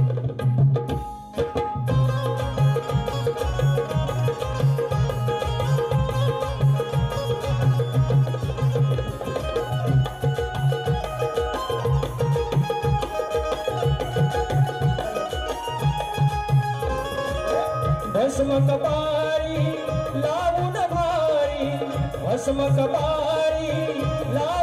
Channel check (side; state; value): both; identical; correlation 1.00